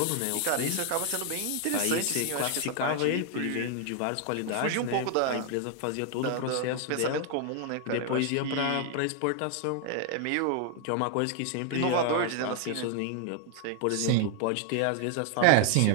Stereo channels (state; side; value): different; both; correlation 0.00